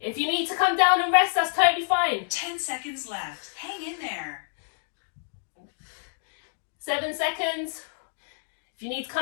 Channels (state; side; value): silent; right; digital silence